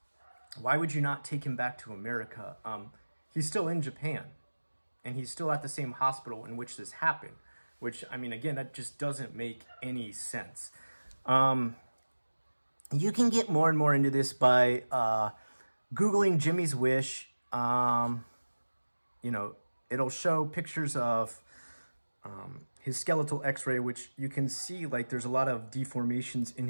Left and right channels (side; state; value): both; inverted; correlation -1.00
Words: why would you not take him back to America? He's still in Japan, and he's still at the same hospital in which this happened, which, I mean, again, that just doesn't make any sense. You can get more and more into this by Googling Jimmy's Wish. You know, it'll show pictures of his skeletal x-ray, which you can see like there's a lot of deformations in